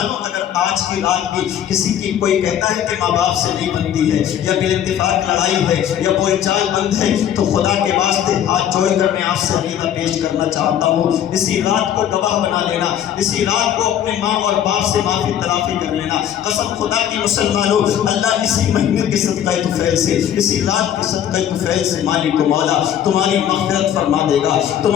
اگر آج کی رات بھی کسی کی کوئی کہتا ہے کہ ماں باپ سے نہیں بنتی ہے یا بال اتفاق لڑائی ہے یا کوئی چال بند ہے تو خدا کے واسطے ہاتھ جوڑ کر میں آپ سے عقیدہ پیش کرنا چاہتا ہوں، اسی رات کو گواہ بنا لینا، اسی رات کو اپنے ماں اور باپ سے معافی تلافی کر لینا۔ قسم خدا کی مسلمانوں، اللہ اسی مہینے کے صدقہ طفیل سے، اسی رات کے صدقہ طفیل سے مالک و مولا تمہاری مغفرت فرما دے گا،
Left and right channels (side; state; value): right; quieter; 10.1 dB